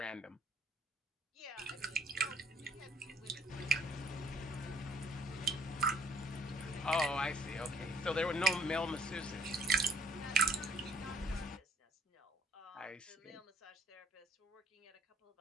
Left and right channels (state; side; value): normal; both; correlation 0.64